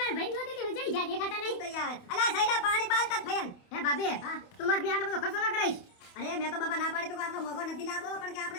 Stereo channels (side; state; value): right; late; 28 ms